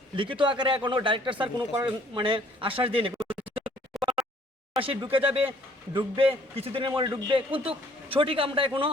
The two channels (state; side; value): normal; both; correlation 0.60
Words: লিখিত আকারে এখনও ডাইরেক্টর স্যার কোনো আশ্বাস দিয়েনি। ঢুকবে কিছুদিনের মধ্যে ঢুকবে, কিন্তু সঠিক